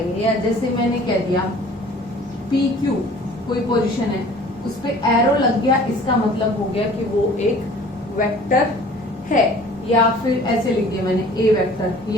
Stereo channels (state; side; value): normal; both; correlation 0.49